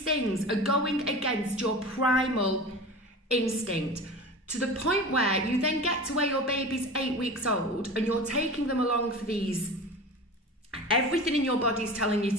things are going against your primal instinct, to the point where you then get to where your baby's 8 weeks old and you're taking them along for these, everything in your body's telling you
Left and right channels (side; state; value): both; normal; correlation 0.34